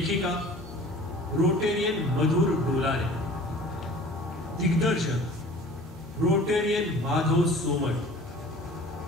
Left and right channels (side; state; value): both; normal; correlation 0.45